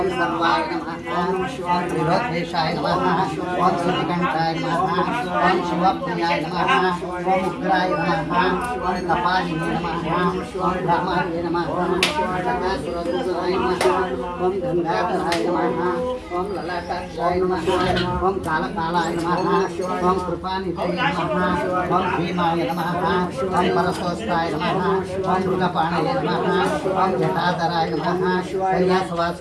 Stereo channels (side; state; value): both; identical; correlation 1.00